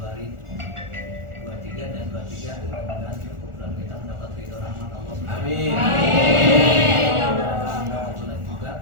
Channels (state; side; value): late; left; 1.4 ms